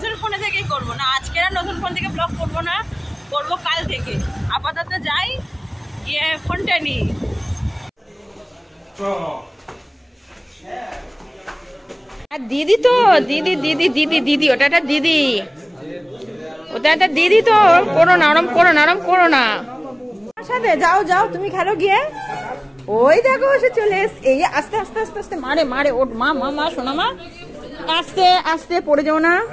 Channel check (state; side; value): identical; both; correlation 1.00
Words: ফোনে থেকেই করবো না। আজকে আর নতুন ফোন থেকে ব্লগ করবো না, করবো কাল থেকে। আপাতত যাই, গিয়ে ফোনটা নিই। দিদি তো দিদি দিদি দিদি দিদি ওটা একটা দিদি, ওটা একটা দিদি তো। করো না আরাম, করো না আরাম, করো না। সাথে যাও যাও, তুমি খেলো গিয়ে। ওই দেখো সে চলে এসে। এই আস্তে আস্তে আস্তে আস্তে মারে মারে। ওর মা মা মা শোনা মা, আস্তে আস্তে পড়ে যাও না,